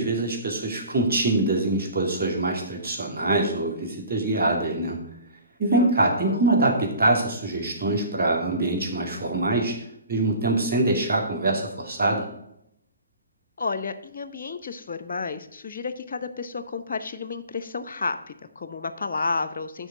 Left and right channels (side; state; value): both; inverted; correlation -0.44